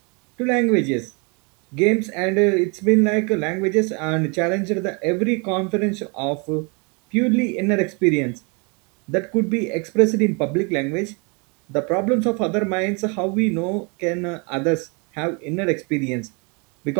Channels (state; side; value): quieter; left; 32.5 dB